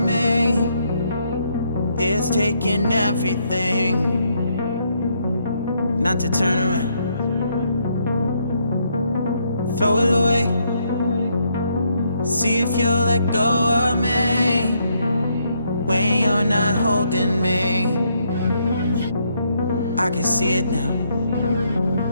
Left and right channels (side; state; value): both; inverted; correlation -0.74